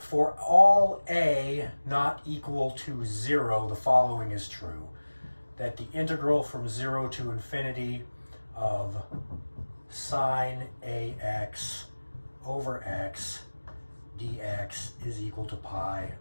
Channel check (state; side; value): inverted; both; correlation -1.00